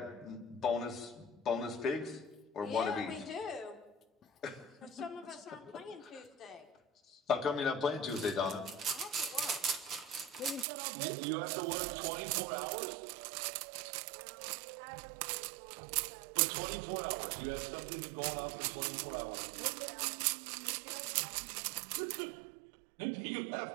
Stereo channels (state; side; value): drops out; left; at 10.7 s